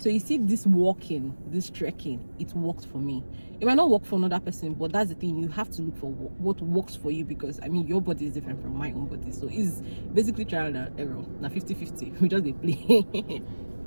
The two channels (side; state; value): both; inverted; correlation -1.00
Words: you see, this walking, this trekking, it worked for me. It might not work for another person, but that's the thing, you have to look for what works for you, because I mean, your body is different from my own body. So it's basically trial and error. Now 50-50, we just they play.